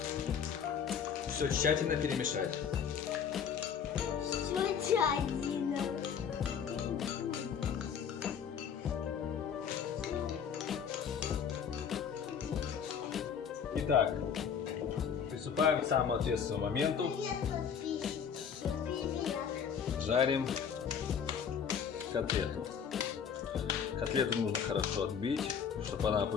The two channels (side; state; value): right; quieter; 7.4 dB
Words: Все тщательно перемешать. Итак, приступаем к самому ответственному моменту. Жарим котлету. Котлету нужно хорошо отбить, чтобы она